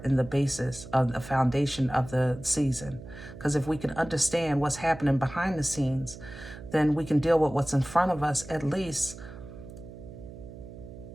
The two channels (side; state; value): right; noise; hum, 14 dB below the sound